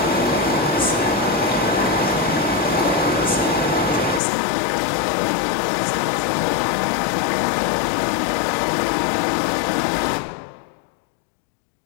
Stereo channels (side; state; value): right; drops out; at 4.2 s